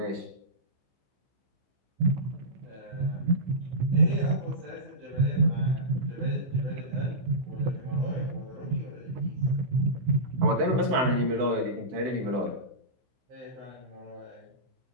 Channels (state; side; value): late; left; 16 ms